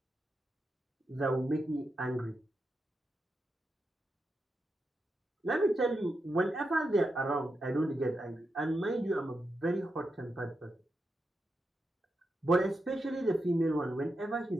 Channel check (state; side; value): normal; both; correlation 0.87